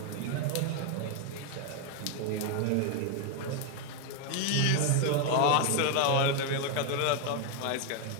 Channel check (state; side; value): different; both; correlation 0.01